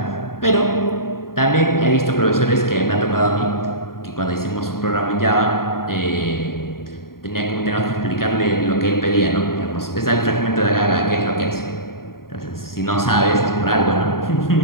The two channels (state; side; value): late; right; 0.92 ms